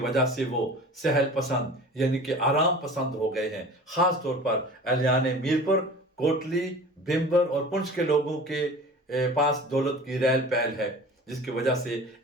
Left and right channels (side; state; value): both; normal; correlation 0.40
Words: سے وہ سہل پسند یعنی کہ آرام پسند ہو گئے ہیں۔ خاص طور پر اہلیان میرپور، کوٹلی، بھمبر اور پنچ کے لوگوں کے پاس دولت کی ریل پیل ہے، جس کی وجہ سے